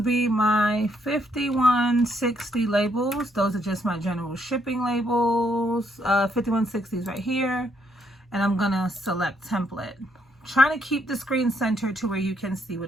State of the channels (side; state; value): both; normal; correlation 0.73